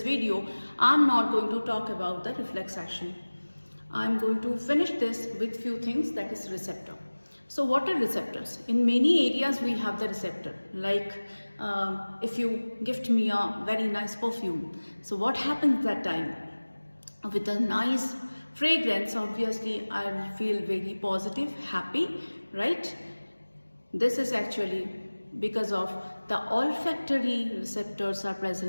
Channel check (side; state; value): both; inverted; correlation -1.00